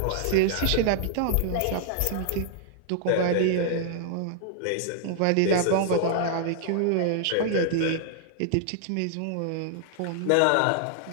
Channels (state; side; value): different; both; correlation -0.01